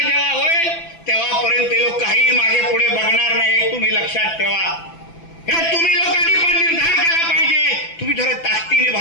होईल तेव्हापर्यंत ते लोक काही मागे पुढे बघणार नाही. तुम्ही लक्षात ठेवा. हे तुम्ही लोकांनी पण निर्धार केला पाहिजे. तुम्ही जरा ताकदीने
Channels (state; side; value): late; right; 6.0 ms